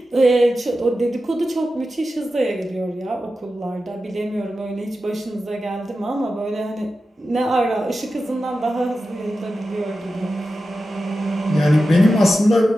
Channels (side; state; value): both; normal; correlation 0.92